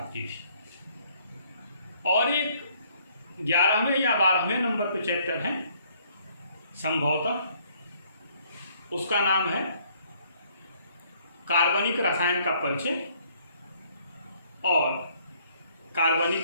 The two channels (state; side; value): inverted; both; correlation -0.64